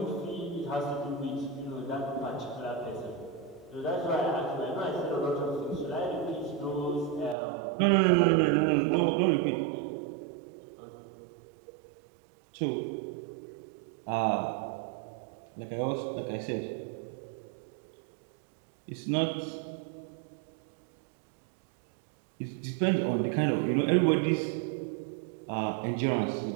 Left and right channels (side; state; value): left; drops out; at 7.4 s